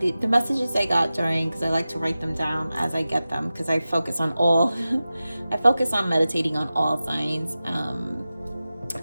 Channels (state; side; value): inverted; both; correlation -0.95